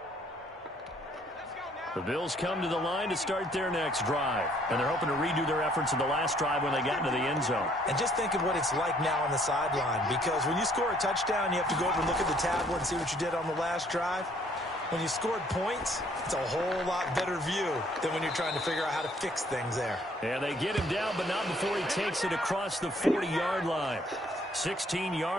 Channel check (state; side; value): normal; both; correlation 0.63